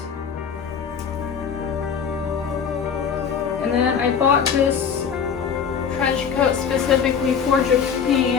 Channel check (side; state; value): right; quieter; 6.9 dB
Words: And then I bought this trench coat specifically for